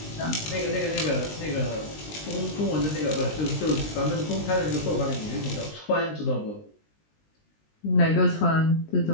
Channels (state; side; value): late; right; 19 ms